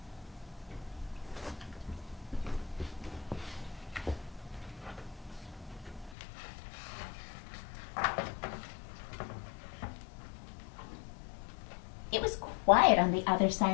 It was quiet on the other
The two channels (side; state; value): right; drops out; at 6.2 s